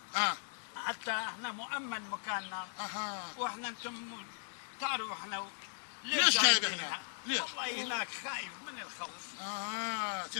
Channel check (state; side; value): silent; right; digital silence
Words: اه حتى احنا مؤمن مكاننا. اها. واحنا انتم تعرفوا احنا ليش جايب جايبين هنا؟ ليش؟ والله هناك خايف من الخوف.